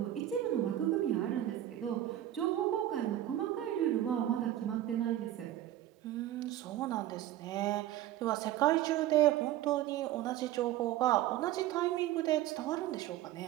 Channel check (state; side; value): quieter; left; 13.3 dB